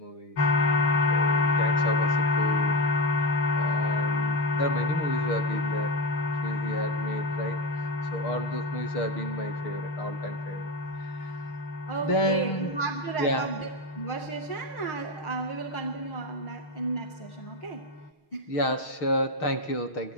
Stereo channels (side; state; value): right; late; 6.5 ms